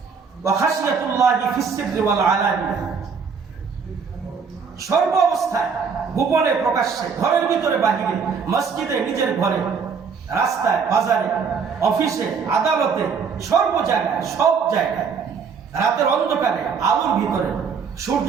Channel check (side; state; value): left; quieter; 5.9 dB